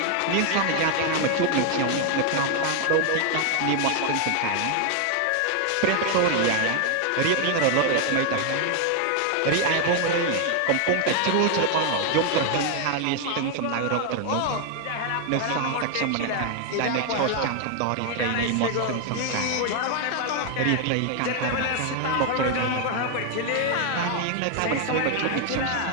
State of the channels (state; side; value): different; both; correlation 0.00